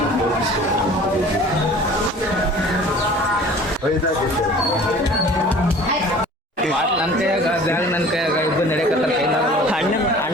ನನ್ನ ಕೈಯಾಗ ಬ್ಯಾಗ್, ನನ್ನ ಕೈಯಾಗ ಇಬ್ಬರು ನಡೆಯಕತ್ತಾರ.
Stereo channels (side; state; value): both; normal; correlation 0.46